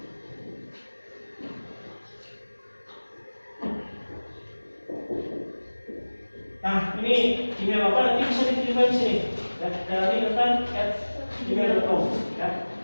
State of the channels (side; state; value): both; inverted; correlation -1.00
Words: Nah, ini email Bapak nanti bisa dikirimkan di sini ya, dari @gmail.com ya.